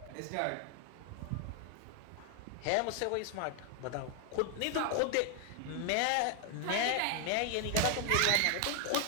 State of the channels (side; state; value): both; different; correlation 0.00